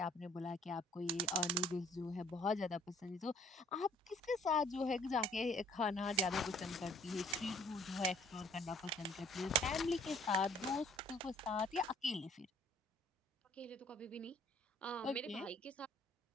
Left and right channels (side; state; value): both; normal; correlation 0.57